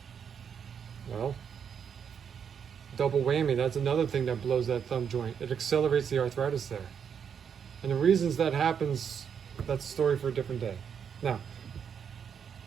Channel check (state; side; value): quieter; left; 7.5 dB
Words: well, double whammy. That's another thing that blows that thumb joint. It accelerates the arthritis there. And the reasons that happens, that's a story for a different day. Now,